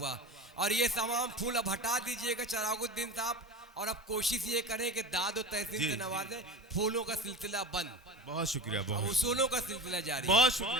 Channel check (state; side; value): normal; both; correlation 0.29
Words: और ये तमाम फूल अब हटा दीजिएगा चरागुद्दीन साहब, और अब कोशिश ये करें कि दाद और तहसीन से नवाजें। फूलों का सिलसिला बंद। बहुत शुक्रिया, बहुत उसूलों का सिलसिला जारी। बहुत